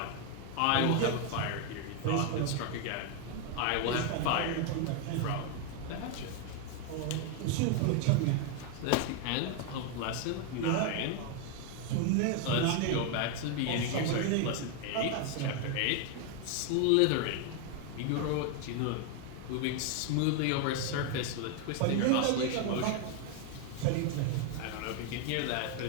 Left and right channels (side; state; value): both; different; correlation 0.01